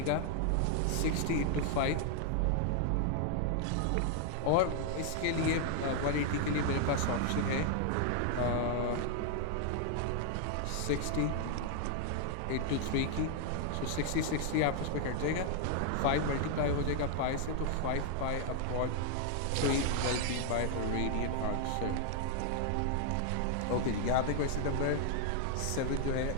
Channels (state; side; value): different; both; correlation 0.00